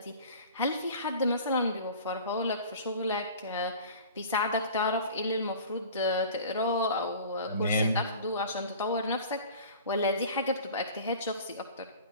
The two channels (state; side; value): inverted; both; correlation -0.42